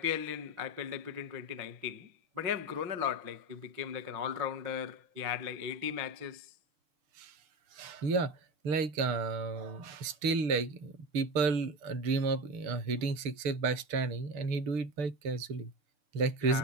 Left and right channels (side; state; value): left; late; 6.7 ms